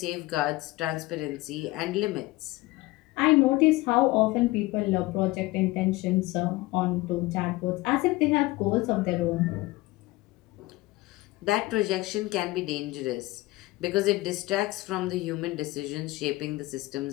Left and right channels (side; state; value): right; quieter; 20.0 dB